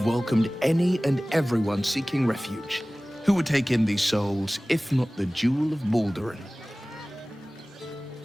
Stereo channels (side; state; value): both; normal; correlation 0.98